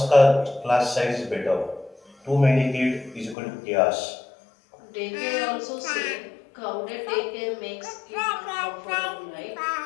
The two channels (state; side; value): drops out; right; at 3.4 s